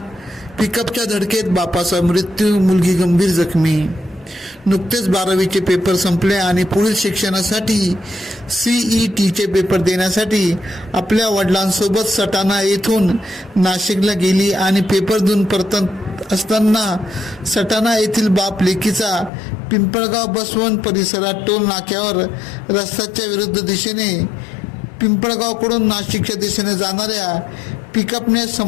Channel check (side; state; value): right; drops out; at 19.3 s